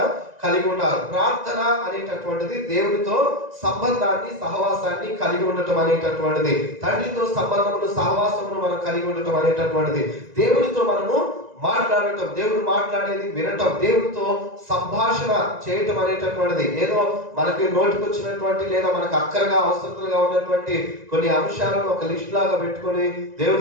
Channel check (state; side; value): late; left; 1.9 ms